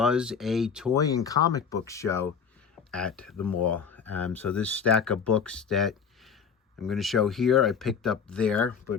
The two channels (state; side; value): quieter; right; 6.5 dB